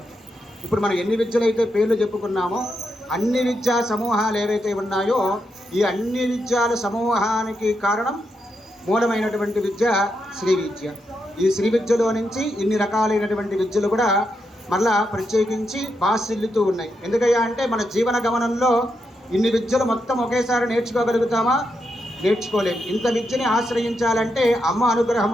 ఇప్పుడు మనం ఎన్ని విద్యలైతే పేర్లు చెప్పుకున్నామో అన్ని విద్యా సమూహాలు ఏవైతే ఉన్నాయో ఈ అన్ని విద్యాల సమూహానికి కారణం మూలమైనటువంటి విద్య శ్రీ విద్య. ఈ శ్రీ విద్యలో నుంచి ఇన్ని రకాలైనటువంటి విద్యలు కూడా మళ్ళా ప్రత్యేకించి బాసిల్లుతూ ఉన్నాయి. ఎందుకయ్యా అంటే మన జీవన గమనంలో ఇన్ని విద్యలు మొత్తం ఒకేసారి నేర్చుకోగలుగుతామా? నేర్చుకోలేము. ఇంత విద్యని ఆశ్రయించాలంటే అమ్మ అనుగ్రహం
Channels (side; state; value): both; normal; correlation 0.83